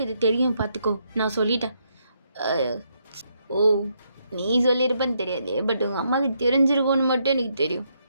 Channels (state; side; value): inverted; both; correlation -0.77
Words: இது தெரியும், பார்த்துக்கோ. நான் சொல்லிட்டேன். ஓ, நீ சொல்லியிருப்பேன்னு தெரியாது, பட் உங்கள் அம்மாவுக்கு தெரிஞ்சிருக்கும்னு மட்டும் எனக்கு தெரியும்.